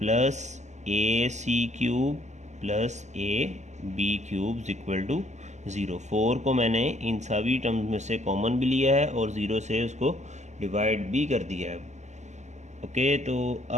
a C cube plus a B cube equal to 0। 4 को मैंने इन सभी टर्म्स में से कॉमन भी लिया है और 0 से उसको डिवाइड भी कर दिया है। ओके, तो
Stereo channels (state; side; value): late; left; 0.34 ms